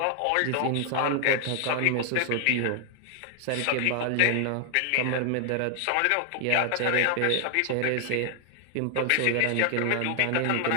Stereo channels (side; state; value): both; different; correlation 0.00